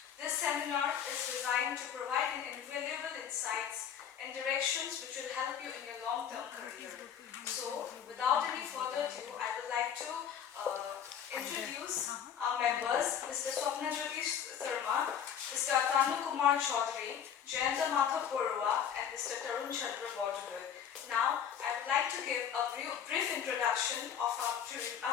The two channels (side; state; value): right; quieter; 8.6 dB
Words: This seminar is designed to provide invaluable insights and directions which will help you in your long-term career. So, without any further ado, I would like to introduce our members, Mr. Swapnajyoti Sharma, Mr. Atanu Kumar Chaudhary, Jayanta Madhav Barua, and Mr. Tarun Chandra Bodhar. Now, I would like to give a brief introduction of